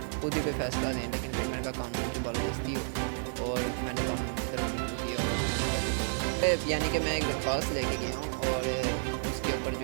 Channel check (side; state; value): left; silent; 57 dB below the other